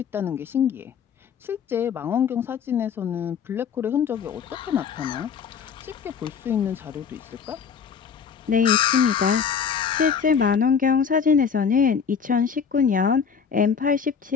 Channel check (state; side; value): quieter; right; 6.7 dB